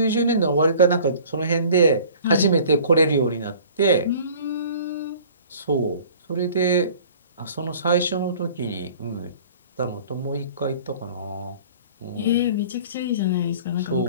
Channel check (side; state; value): both; inverted; correlation -0.48